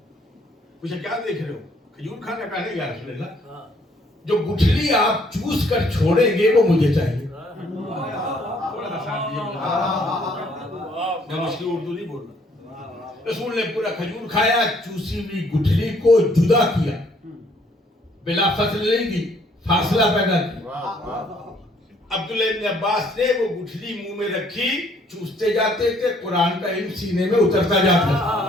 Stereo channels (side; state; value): both; normal; correlation 0.64